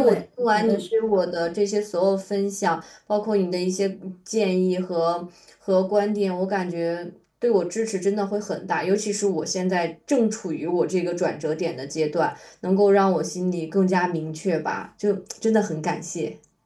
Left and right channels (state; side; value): identical; both; correlation 1.00